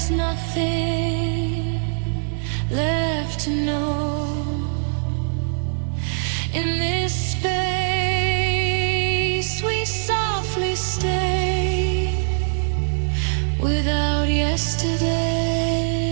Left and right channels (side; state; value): left; silent; digital silence